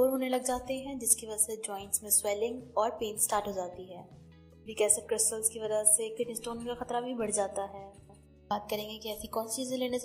होने लग जाते हैं, जिसकी वजह से जॉइंट्स में स्वेलिंग और पेन स्टार्ट हो जाती है। यूरिक एसिड क्रिस्टल्स की वजह से किडनी स्टोन का खतरा भी बढ़ जाता है। बात करेंगे कि ऐसी कौन सी चीज़ें लेने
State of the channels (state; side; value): identical; both; correlation 1.00